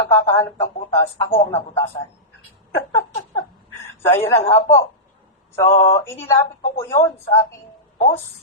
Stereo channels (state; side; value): normal; both; correlation -0.15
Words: ng butas, ako ang nabutasan. So, ayun lang nga po. So, inilapit ko po yun sa aking